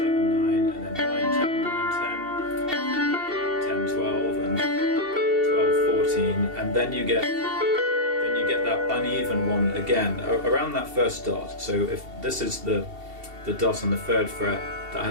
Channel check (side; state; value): left; late; 2.7 ms